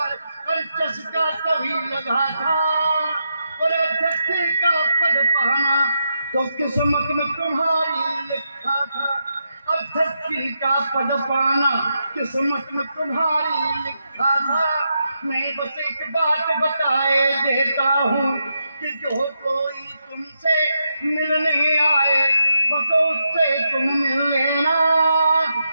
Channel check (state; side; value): inverted; both; correlation -0.83